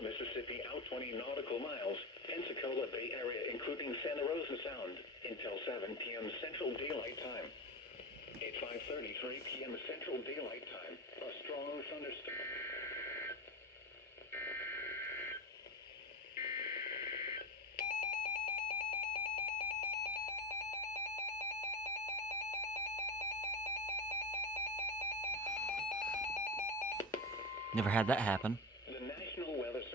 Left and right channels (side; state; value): both; normal; correlation 0.19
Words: out 20 nautical miles, Pensacola Bay Area including Santa Rosa Sound, until 7 p.m. Central Daylight Time. At 5:33 p.m. Central Daylight Time, a strong thunderstorm. Never had that happen. The National Weather